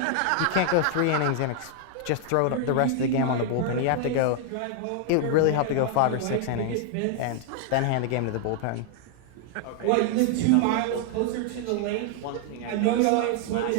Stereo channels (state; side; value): different; both; correlation 0.00